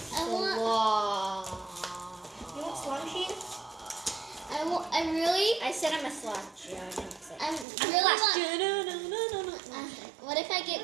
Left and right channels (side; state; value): left; drops out; at 7.7 s